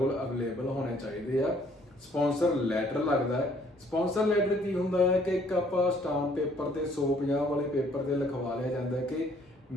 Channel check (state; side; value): normal; both; correlation 0.62